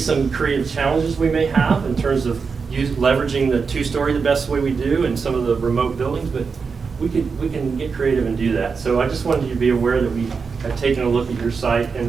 creative challenges we may have in terms of leveraging the 2-story the best way we do and some of the remote buildings, but we can get creative and do that. So I just wanted you to be aware that we have taken a look at your site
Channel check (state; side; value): quieter; left; 5.3 dB